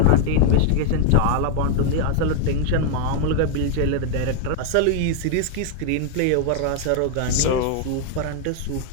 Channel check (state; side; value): different; both; correlation 0.00